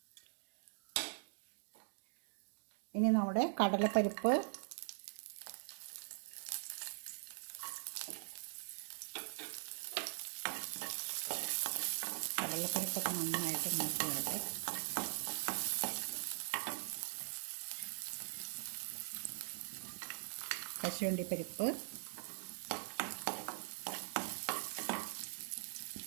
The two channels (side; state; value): left; silent; digital silence